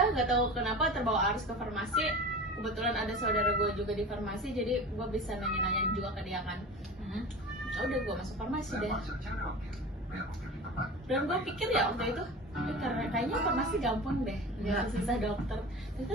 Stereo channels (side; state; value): both; normal; correlation 0.34